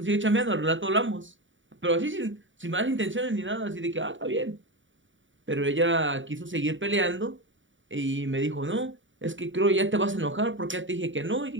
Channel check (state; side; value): late; left; 0.56 ms